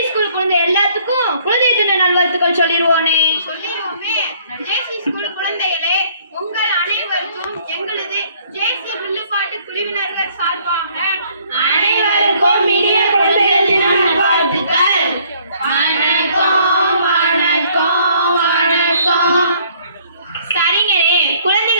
ஸ்கூல் குழந்தை எல்லாத்துக்கும் குழந்தை தின நல்வாழ்த்துக்கள் சொல்லிடுவோனே. சொல்லிடுவோமே. ஜேசி ஸ்கூல் குழந்தைகளே, உங்கள் அனைவருக்கும் எங்களது ஜேசி வில்லுப்பாட்டு குழுவினர்கள் சார்பாக அனைவருக்கும் இனிய குழந்தைகள் தின நல்வாழ்த்துக்கள். வணக்கம் வணக்கம் வணக்கம். சரிங்கண்ணே,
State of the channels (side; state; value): both; inverted; correlation -0.61